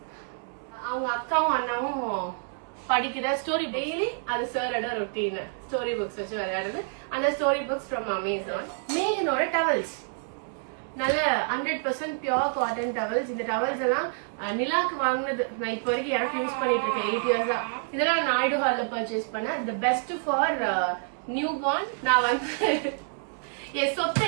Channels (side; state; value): left; silent; digital silence